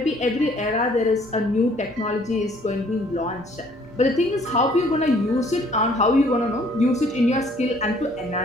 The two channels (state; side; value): normal; both; correlation 0.59